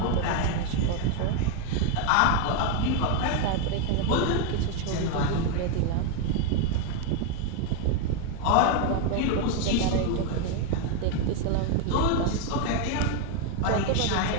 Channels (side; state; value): both; different; correlation 0.01